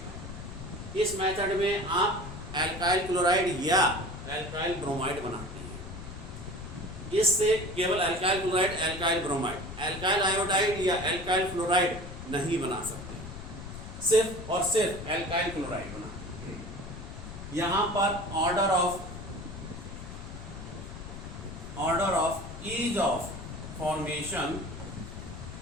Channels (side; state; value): left; noise; rumble, 11 dB below the sound